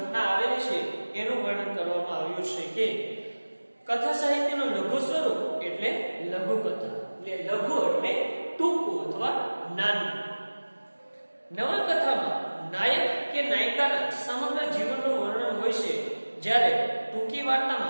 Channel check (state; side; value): inverted; both; correlation -1.00